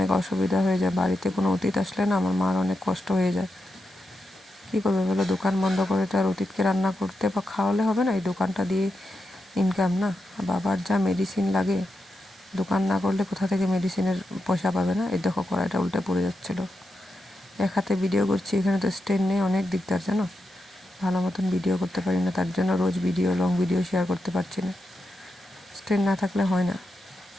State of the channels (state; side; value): normal; both; correlation 0.87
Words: অসুবিধা হয়ে যায়। বাড়িতে কোনো অতিথি আসলে না আমার মার অনেক কষ্ট হয়ে যায়। কী করবে বলো, দোকান বন্ধ করে তো আর অতিথিকে রান্না করতে বা খাওয়ালে হবে না, এই দোকানটা দিয়ে ইনকাম না। বাবার যা মেডিসিন লাগে, দোকান না করলে কোথা থেকে মেডিসিনের পয়সা পাবে না। এই দেখো কড়াইটা উল্টে পড়ে যাচ্ছিলো, এক হাতে ভিডিও করছি, এখানে তো স্ট্যান্ড নেই, অনেক দিকদার জানো, ভালো মতন ভিডিও করতে পারি না, তার জন্য রোজ লং ভিডিও শেয়ার করতে পারছি না, স্ট্যান্ড না থাকলে হয় না।